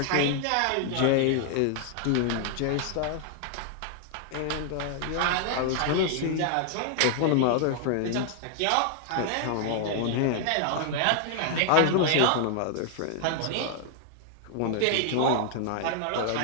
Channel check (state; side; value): different; both; correlation 0.00